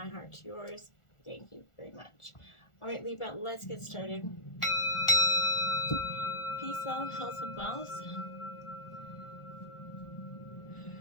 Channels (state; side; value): late; right; 1.4 ms